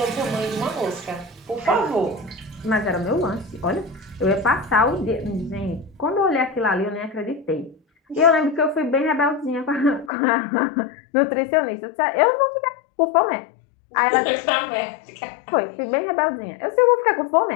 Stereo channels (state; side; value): drops out; right; at 10.1 s